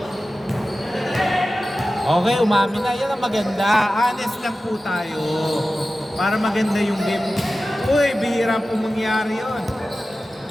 Okay, umamin na. Yan ang maganda. Honest lang po tayo. Para maganda yung game. Uy, bihira po mangyari yun.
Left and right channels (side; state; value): both; normal; correlation 0.95